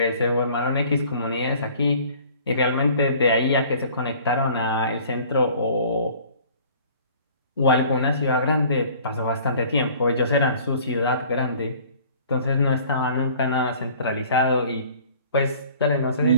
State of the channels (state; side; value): inverted; both; correlation -0.51